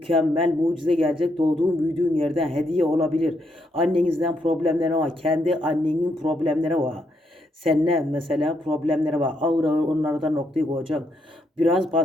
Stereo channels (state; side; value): normal; both; correlation 0.77